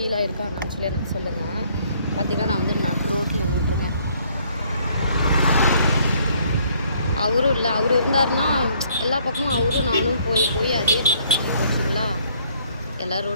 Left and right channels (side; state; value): both; inverted; correlation -0.64